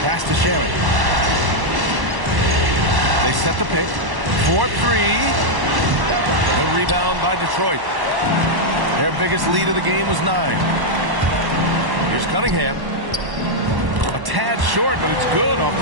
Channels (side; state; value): left; late; 1.1 ms